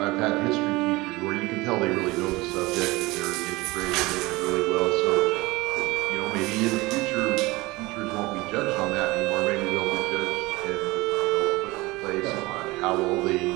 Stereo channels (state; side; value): quieter; left; 21.7 dB